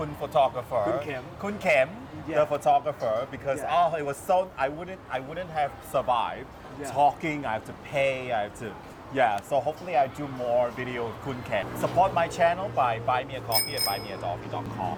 photographer. Kun Kem. Kun Kem, Yeah. the photographer, because Yeah. it was so I wouldn't have survived Yeah. talking. I have to pay. I have to. Yeah, so hopefully I do more video with Kun Ken. Support my channel by buy me a coffee at buymeacoffee.com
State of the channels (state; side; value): identical; both; correlation 1.00